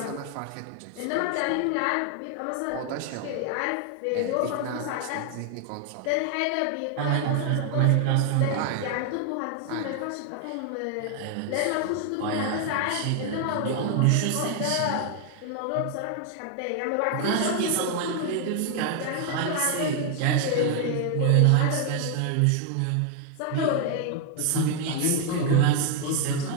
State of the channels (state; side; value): different; both; correlation 0.00